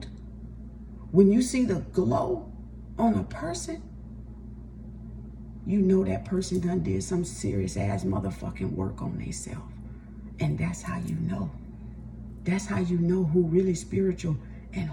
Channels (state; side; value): identical; both; correlation 1.00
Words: when you see the glow on a person, you know that person done did some serious ass motherfucking work on themselves. And that's how you know. That's how you know who really spiritual and